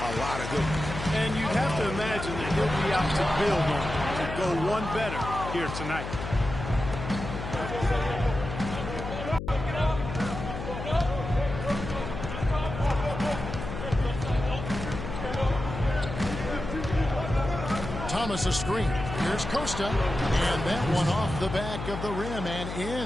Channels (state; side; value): noise; left; hum, 7 dB below the sound